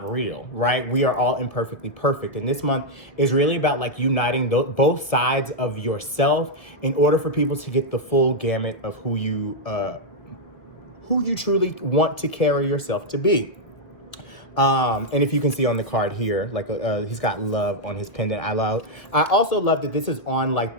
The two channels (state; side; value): late; right; 1.5 ms